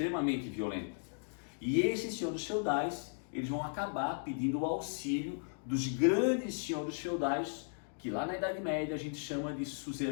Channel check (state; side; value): silent; right; digital silence